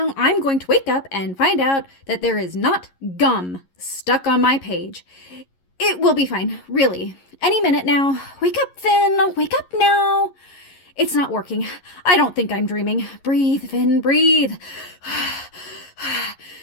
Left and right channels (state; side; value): late; right; 11 ms